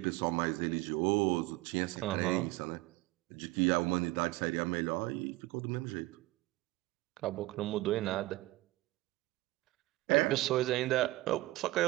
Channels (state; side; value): quieter; left; 19.2 dB